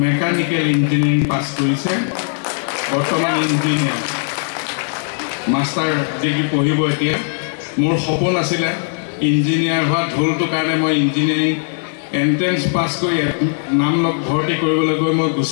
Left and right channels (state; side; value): silent; right; digital silence